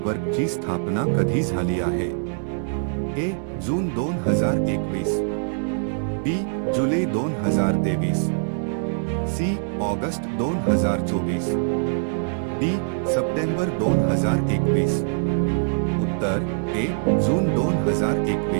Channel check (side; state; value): left; silent; digital silence